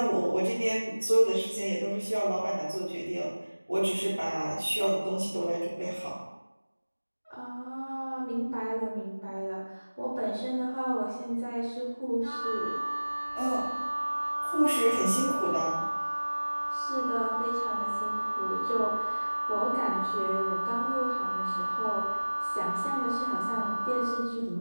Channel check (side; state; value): both; inverted; correlation -1.00